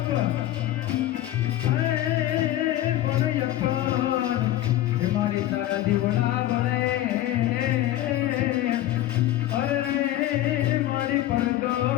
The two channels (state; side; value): quieter; right; 14.0 dB